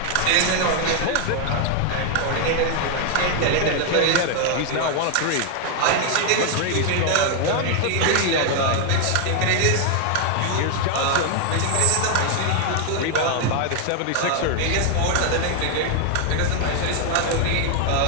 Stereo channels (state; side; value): different; both; correlation 0.00